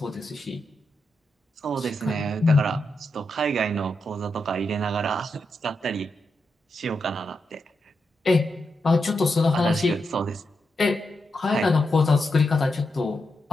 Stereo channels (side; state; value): both; normal; correlation 0.85